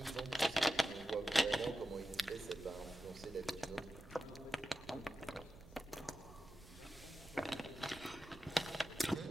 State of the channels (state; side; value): noise; right; rumble, 18 dB below the sound